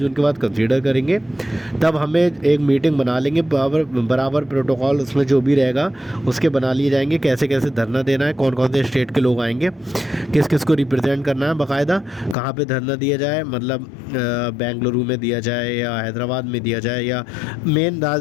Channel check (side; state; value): right; drops out; at 12.4 s